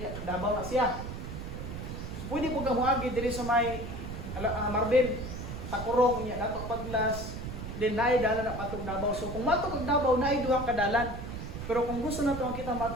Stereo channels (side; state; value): right; noise; rumble, 7 dB below the sound